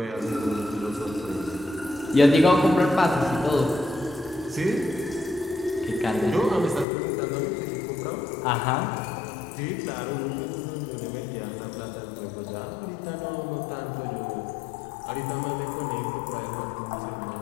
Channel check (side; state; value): right; drops out; at 6.9 s